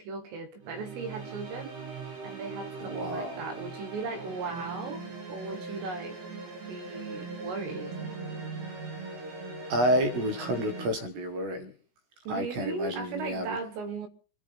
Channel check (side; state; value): left; late; 16 ms